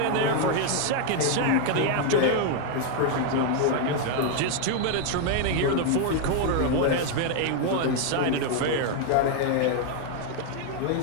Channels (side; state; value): both; different; correlation 0.00